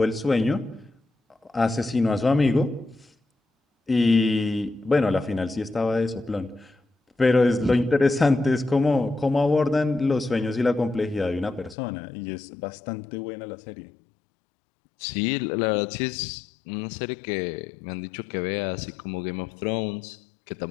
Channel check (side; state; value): right; drops out; at 11.8 s